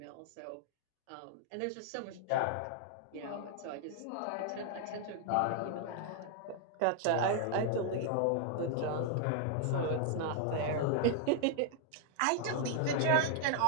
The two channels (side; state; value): both; different; correlation 0.00